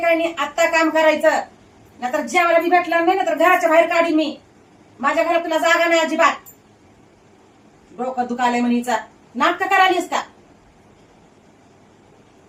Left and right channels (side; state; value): both; identical; correlation 1.00